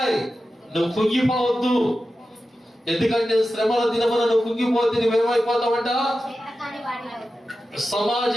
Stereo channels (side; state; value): both; normal; correlation 0.92